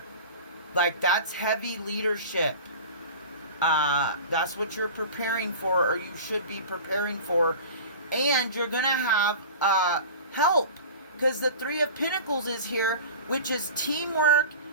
Like, that's heavy leadership. That's what you're preparing for, or you should be preparing for. And you're going to have help, because the 3 of Pentacles is here, which is teamwork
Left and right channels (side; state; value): both; inverted; correlation -0.37